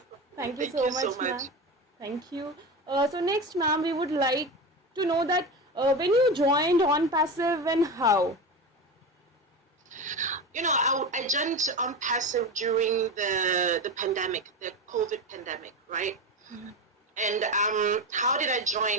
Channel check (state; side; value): normal; both; correlation 0.23